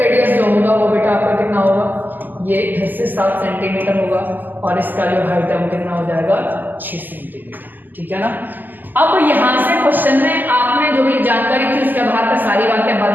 जो होगा वो बेटा आपका कितना होगा, ये फिर से 7 सेंटीमीटर होगा और इसका जो हाइट है वो कितना हो जाएगा 6 सेंटीमीटर, ठीक है ना। अब यहां से क्वेश्चन में आपने जो भी जानकारी थी उसके आधार पर सारी बातें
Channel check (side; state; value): left; late; 0.087 ms